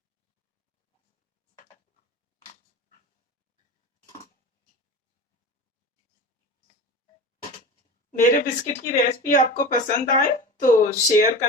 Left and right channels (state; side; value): normal; both; correlation 0.31